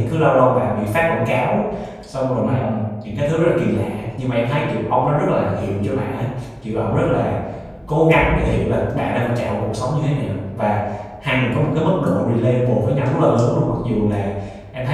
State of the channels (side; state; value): both; identical; correlation 1.00